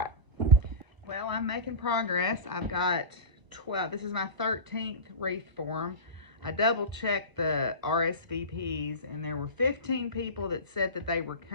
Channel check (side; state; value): left; late; 1.0 ms